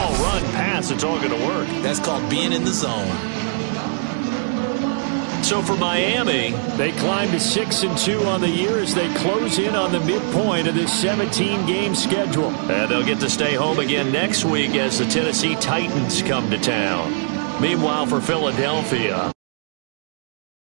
run, pass, it's all going to work. That's called being in the zone. So for Miami, they climb to 6-2 on the year as they close in on the midpoint of this 17-game schedule. and they'll get to stay home again next week as the Tennessee Titans come to town. Meanwhile, for Philadelphia,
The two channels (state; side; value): silent; left; digital silence